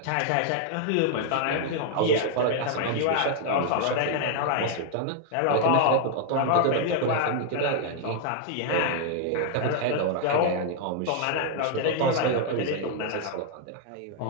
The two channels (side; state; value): both; different; correlation 0.00